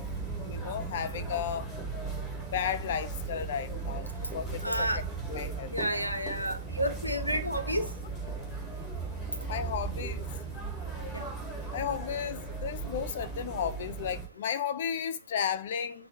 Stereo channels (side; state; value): both; inverted; correlation -0.35